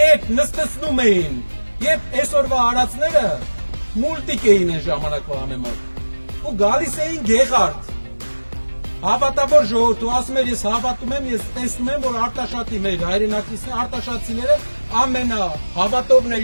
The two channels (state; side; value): inverted; both; correlation -1.00